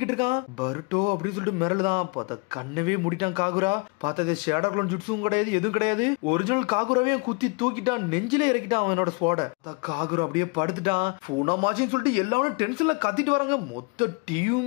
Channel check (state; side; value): quieter; right; 32.2 dB